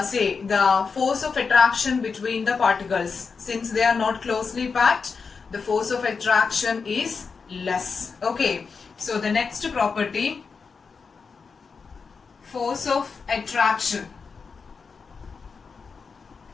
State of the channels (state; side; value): quieter; right; 5.2 dB